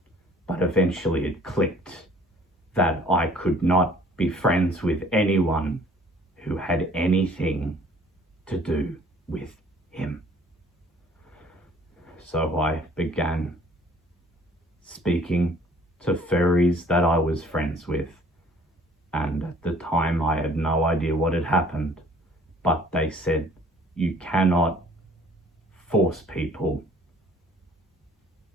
But eventually it clicked that I could not be friends with anyone who had anything to do with him. So I began speaking to furries that I was friends with. And at the time I had no idea what had happened, but they said, you cannot force people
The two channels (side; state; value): both; normal; correlation 0.55